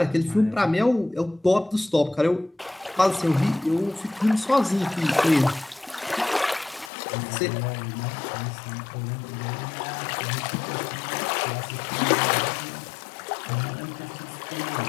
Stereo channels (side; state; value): right; drops out; at 6.9 s